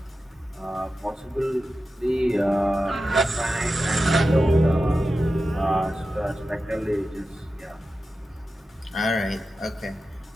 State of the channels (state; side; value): normal; both; correlation 0.92